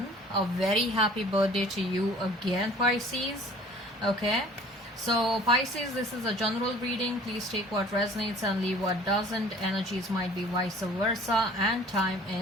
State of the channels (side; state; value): both; normal; correlation 0.50